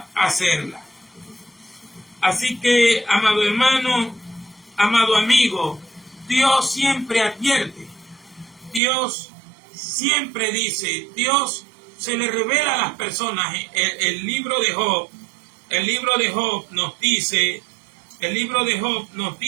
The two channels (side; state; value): left; drops out; at 8.8 s